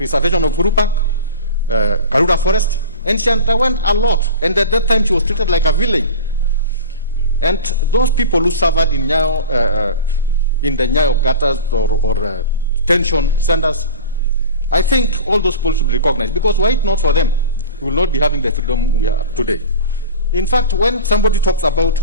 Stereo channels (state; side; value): inverted; both; correlation -0.33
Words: of Uhuru Park, Karura forest, and she underwent a lot. And at that time, she was treated like a villain. And those people who suffered in Nyayo, in the Nyayo gutters or tension centers, I think all those people should be recognized, because were it not for them, we will not be having the freedom we have today. In fact, when somebody talks about